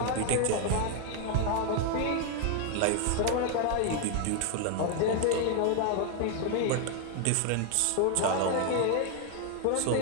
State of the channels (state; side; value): different; both; correlation 0.01